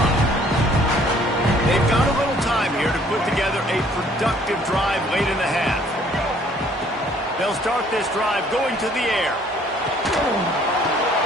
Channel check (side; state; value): both; normal; correlation 0.59